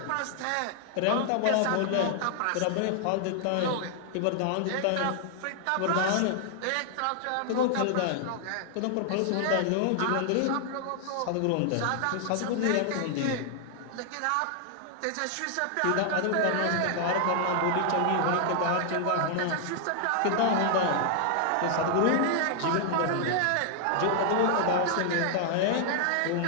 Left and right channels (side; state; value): both; different; correlation 0.00